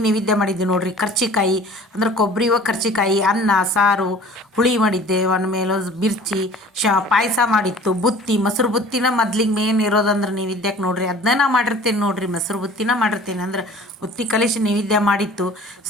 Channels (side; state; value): both; normal; correlation 0.47